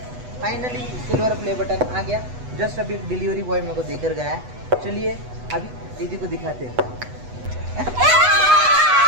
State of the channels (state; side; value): late; left; 8.1 ms